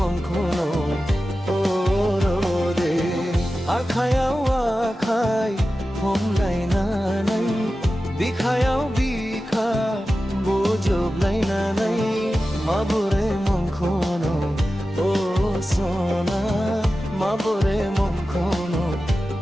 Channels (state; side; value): normal; both; correlation 0.94